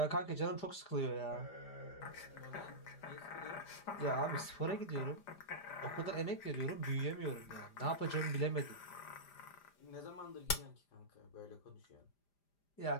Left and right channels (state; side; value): late; right; 5.0 ms